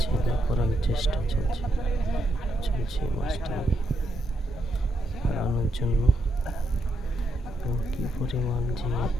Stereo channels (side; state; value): both; normal; correlation 0.80